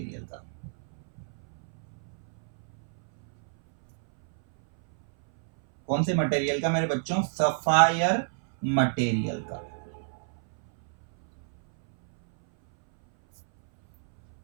का। कौन से मटेरियल का मेरे बच्चों, सफायर मटेरियल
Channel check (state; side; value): silent; left; 59 dB below the other